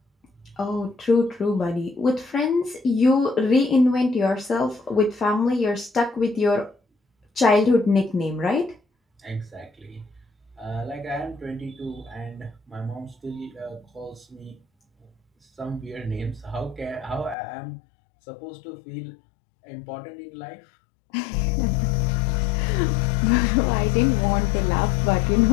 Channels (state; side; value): drops out; right; at 17.4 s